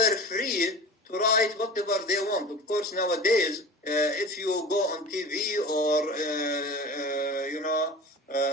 free to write whatever they want. Of course, nowadays, if you go on TV or,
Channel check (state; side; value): normal; both; correlation 0.35